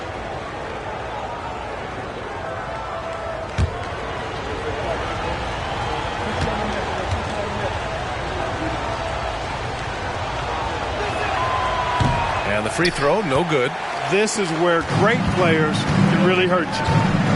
And the free throw, no good. This is where great players can really hurt you.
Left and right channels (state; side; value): identical; both; correlation 1.00